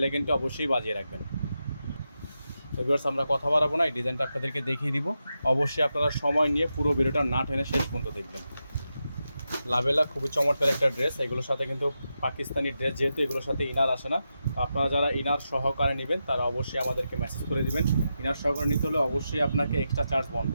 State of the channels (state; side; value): inverted; both; correlation -0.88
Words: আইকনটি অবশ্যই বাজিয়ে রাখবেন। তো ভিউয়ার্স, আমরা কথা বাড়াবো না, এই ডিজাইনটা আপনাদেরকে দেখিয়ে দিব। অবশ্যই আপনারা সময় নিয়ে পুরো ভিডিওটা না টেনে শেষ পর্যন্ত দেখবেন। লাবেলা খুবই চমৎকার একটা ড্রেস। এগুলোর সাথে কিন্তু পাকিস্তানি ড্রেস, যেহেতু এগুলোর সাথে ইনার আসে না, আপনারা যারা ইনার সহকারে নেবেন তারা অবশ্যই আমাদেরকে মেসেজ করে দিবেন। ইনার সহকারে নিতে হলে অবশ্যই আপনাকে এক্সট্রা চার্জ বহন